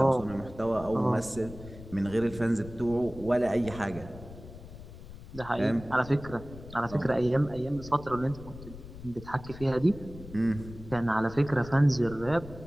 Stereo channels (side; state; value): left; noise; rumble, 15 dB below the sound